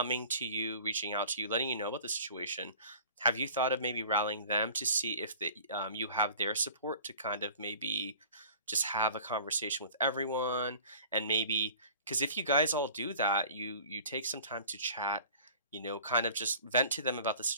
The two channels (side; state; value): both; inverted; correlation -0.45